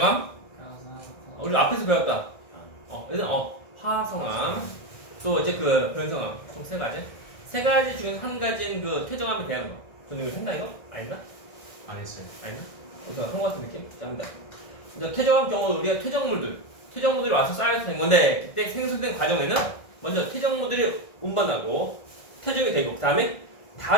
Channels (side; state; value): right; late; 1.6 ms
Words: 우리 앞에서 배웠다. 일단 화성함, 또 이제 그 변성함 총 3가지. 3가지 중에서 한 가지는 그 퇴적함에 대한 거. 저는 이거 했나 이거? 아닌가? 안 했어요. 아닌가? 그런 것 같은 느낌? 자, 합니다. 이제 퇴적함 경우 우리가 퇴적물들이 와서 쌓여서 된 건데, 그때 생성된 과정에는 먼저 퇴적물들이 운반하고 퇴적이 되고, 그 다음에